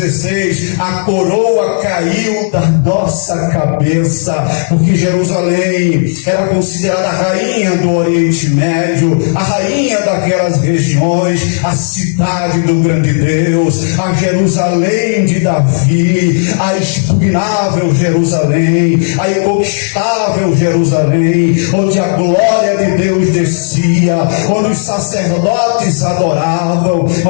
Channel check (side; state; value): right; silent; digital silence